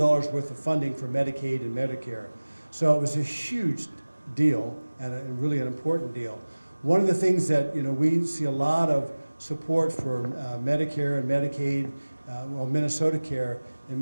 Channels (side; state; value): both; inverted; correlation -1.00